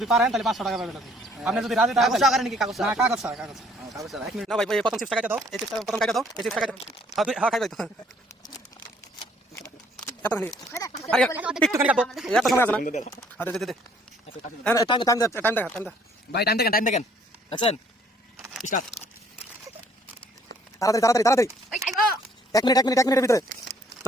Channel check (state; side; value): normal; both; correlation 0.62